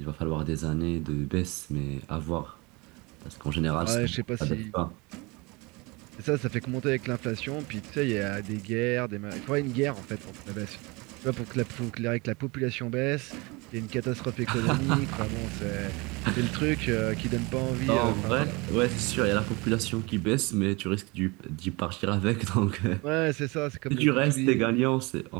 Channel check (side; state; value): left; quieter; 26.1 dB